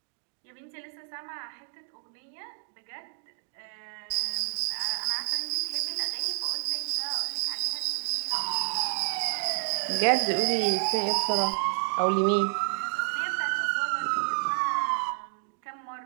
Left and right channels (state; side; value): silent; left; digital silence